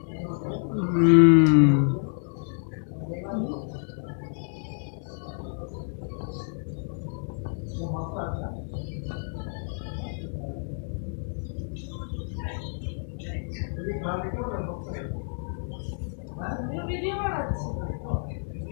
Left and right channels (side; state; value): right; silent; digital silence